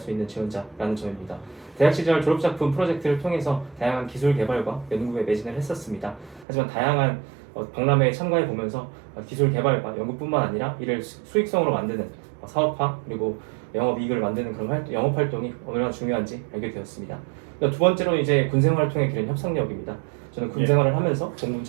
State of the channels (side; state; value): left; drops out; at 6.5 s